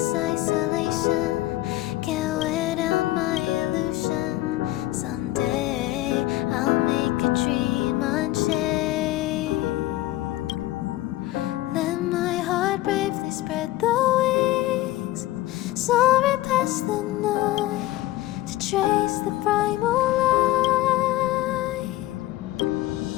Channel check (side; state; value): right; quieter; 16.4 dB